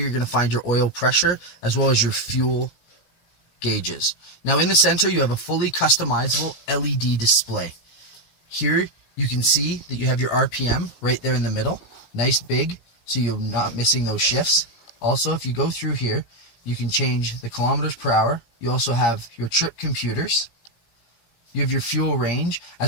going to find your oil pressure as well as your fuel gauges. Now in the center, you have a fully customizable LED display. Here you can see that you have your RPM right there in the middle, nice big, so you're not missing those shifts. Also, if you go through here, you can change the kilometers per hour. You also have your trip computers. You have your fuel range,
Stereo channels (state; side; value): late; right; 17 ms